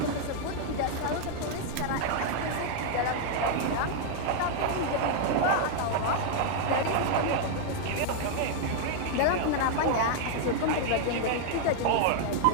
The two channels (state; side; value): different; both; correlation 0.00